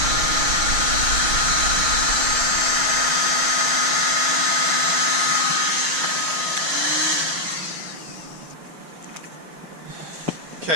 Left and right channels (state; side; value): late; left; 6.2 ms